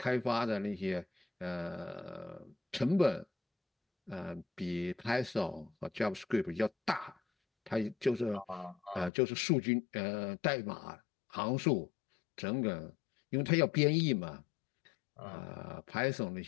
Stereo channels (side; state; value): right; drops out; at 9.1 s